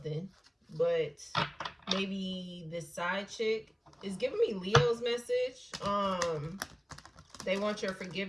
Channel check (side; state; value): both; identical; correlation 1.00